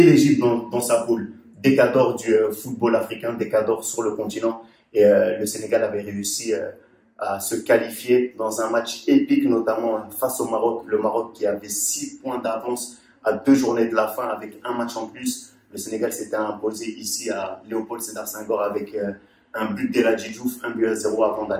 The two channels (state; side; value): identical; both; correlation 1.00